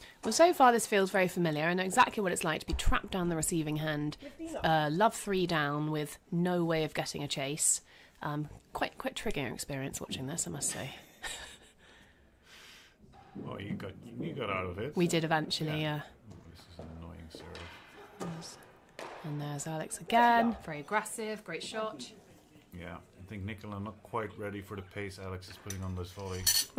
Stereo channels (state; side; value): identical; both; correlation 1.00